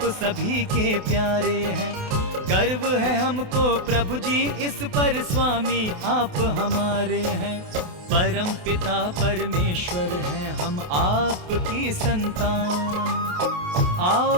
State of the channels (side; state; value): left; late; 28 ms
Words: सभी के प्यारे हैं, गर्व है हमको प्रभु जी इस पर, स्वामी आप हमारे हैं। परम पिता परमेश्वर हैं हम आपकी संतान, आओ